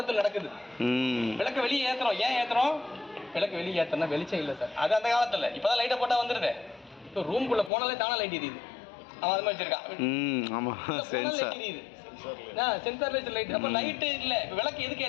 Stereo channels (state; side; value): drops out; right; at 7.7 s